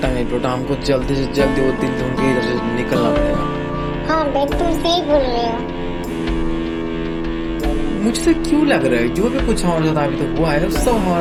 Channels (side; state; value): both; identical; correlation 1.00